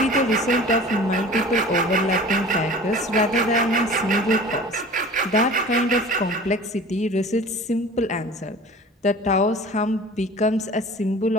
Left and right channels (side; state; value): both; normal; correlation 0.41